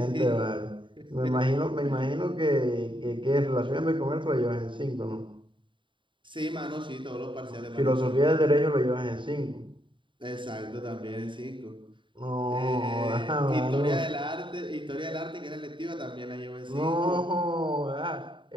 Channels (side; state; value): left; late; 0.24 ms